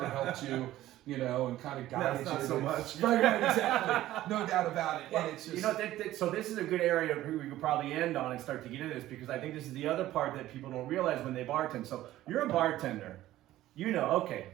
helped you, you know, and kind of guided you. Not so much. Right, exactly. No doubt about it. Well, and it's just, you know, so this is a good area we could probably end on and start to get into this, because I think this is the other part that people don't realize when they bartend. So you're a bartender, you know, okay,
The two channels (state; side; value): quieter; left; 14.7 dB